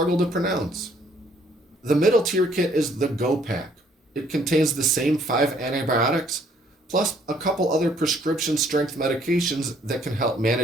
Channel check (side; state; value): both; normal; correlation 0.63